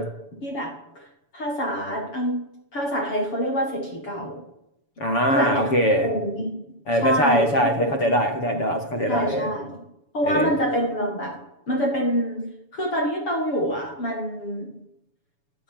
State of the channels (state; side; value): late; right; 7.0 ms